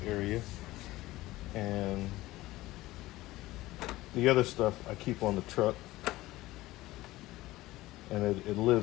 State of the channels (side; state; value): right; quieter; 17.7 dB